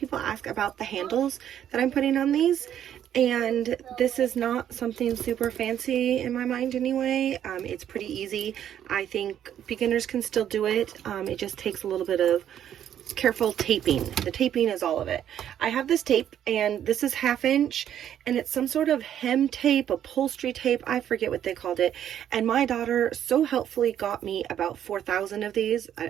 ask about the handles that I'm putting on these, and this is not something super fancy in my mind anyway. It's pretty easy. I think beginners can still do it. It just takes a little bit of careful taping. The taping is all of it. I have this tape, and this is 1/2 inch, and it's some sort of hem tape, upholstery tape. I forget what they called it. And my daughter so helpfully got me about 4,000 of these. I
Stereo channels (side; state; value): left; quieter; 10.2 dB